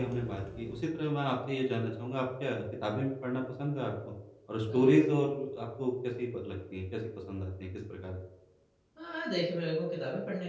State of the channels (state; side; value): identical; both; correlation 1.00